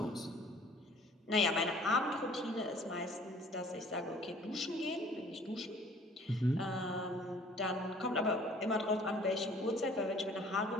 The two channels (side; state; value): both; normal; correlation 0.53